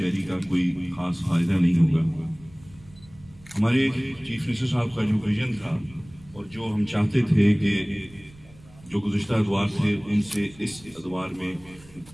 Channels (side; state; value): right; noise; rumble, 23 dB below the sound